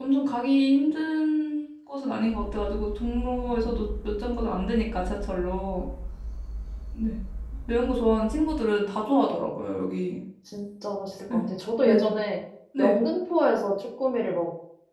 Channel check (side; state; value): both; identical; correlation 1.00